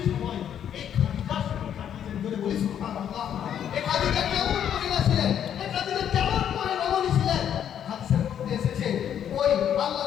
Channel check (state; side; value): quieter; right; 9.4 dB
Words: সময় এই খাদিজার সঙ্গে কাটিয়েছেন। বলে বলি সুবহানাল্লাহ। এই খাদিজা কেমন মহিলা ছিলেন? এই খাদিজা কেমন রমণী ছিলেন? হাদিসের মধ্যে এসেছে ওই আল্লাহ